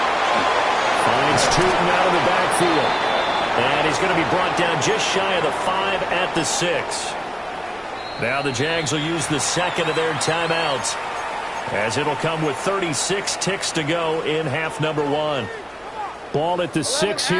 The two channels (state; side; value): identical; both; correlation 1.00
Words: Finds Tootin out of the backfield. And he's going to be brought down just shy of the 5 at the 6. Now the Jags will use the second of their timeouts, as it'll come with 36 ticks to go in half number 1. Ball at the 6